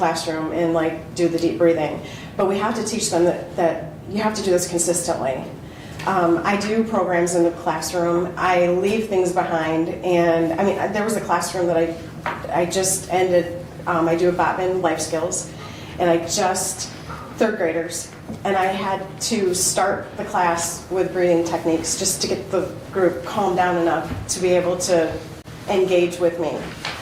and do the deep breathing. But we have to teach them that you have to do this consistently. I do programs in the classroom. I leave things behind, and there was a classroom that I just ended. I do a Botman life skills, and 3rd graders, and I had to start the class with breathing techniques just to get the group calmed down enough to be able to engage with me.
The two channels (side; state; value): both; identical; correlation 1.00